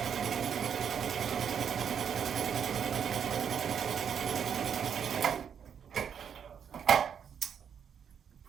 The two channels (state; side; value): quieter; left; 7.8 dB